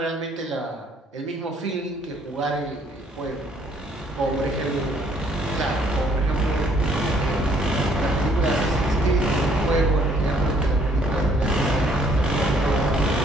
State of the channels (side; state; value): both; normal; correlation 0.64